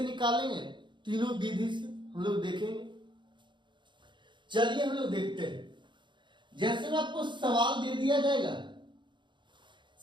तीनों विधि से हम लोग देखेंगे। चलिए हम लोग देखते हैं। जैसे में आपको सवाल दे दिया जाएगा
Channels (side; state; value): left; late; 0.23 ms